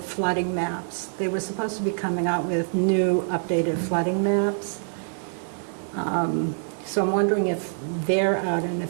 flooding maps. They were supposed to be coming out with new updated flooding maps. So I'm wondering if they're out and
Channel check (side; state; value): left; silent; digital silence